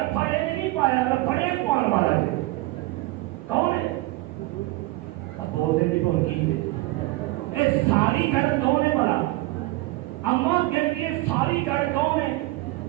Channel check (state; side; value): quieter; left; 19.8 dB